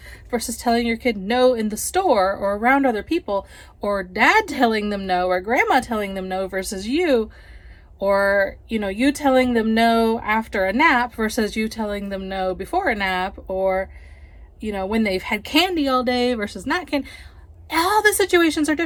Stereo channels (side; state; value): both; identical; correlation 1.00